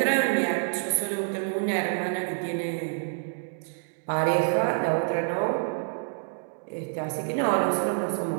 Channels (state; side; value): silent; left; digital silence